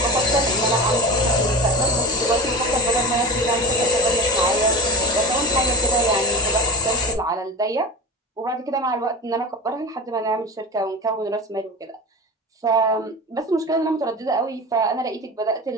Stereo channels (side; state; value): both; normal; correlation 0.23